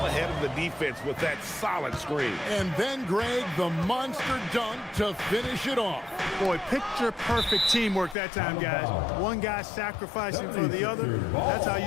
ahead of the defense with that solid screen. And then, Greg, the monster dunk to finish it off. Boy, picture-perfect teamwork that time, guys. One guy sacrificing for the other. That's how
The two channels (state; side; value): drops out; right; at 8.2 s